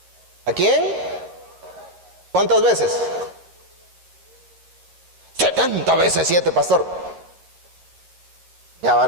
¿A quién? ¿Cuántas veces? 70 veces 7, pastor. Ya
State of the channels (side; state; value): left; late; 11 ms